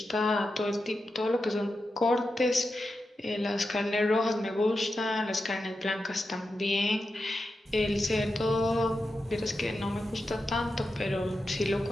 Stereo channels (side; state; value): both; normal; correlation 0.89